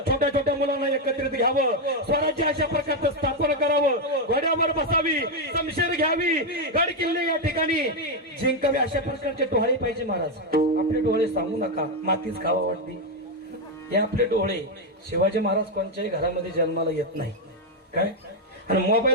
छोट्या मुलांना एकत्रित घ्यावं, स्वराज्य अशा प्रकारचं स्थापन करावं, घोड्यावर बसावी, शमशेर घ्यावी, गड किल्ले या ठिकाणी जिंकावे, अशा प्रकारचे डोहाळे पाहिजे महाराज। आपले डोळे सांगू नका, मातीच खावा वाटते, हे आपले डोळे। शिवाजी महाराज कोणत्याही घरामध्ये जन्माला येत नाही काय, आणि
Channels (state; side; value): normal; both; correlation 0.04